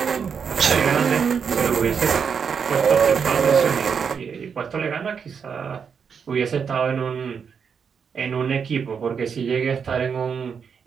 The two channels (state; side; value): quieter; left; 6.5 dB